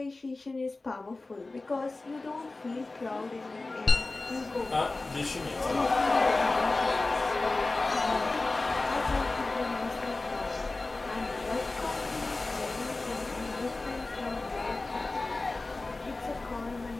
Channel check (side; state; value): right; quieter; 3.3 dB